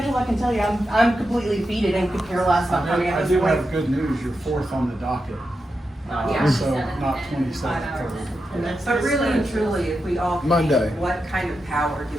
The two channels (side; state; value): both; normal; correlation 0.88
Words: I can tell you, I'm completely defeated and could care less about coming I at do this point. have good news, you're fourth on the docket. Yeah. So not 27th, third. But really and truly, if we all. Monday. What kind of power do